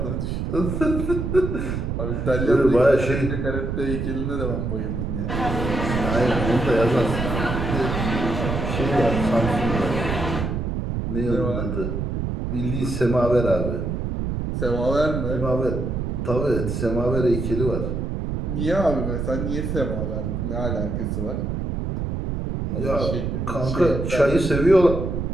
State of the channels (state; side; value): noise; right; rumble, 2 dB below the sound